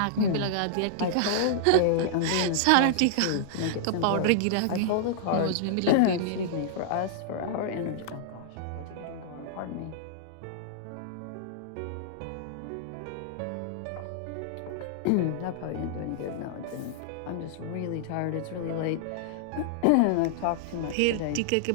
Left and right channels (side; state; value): both; different; correlation -0.01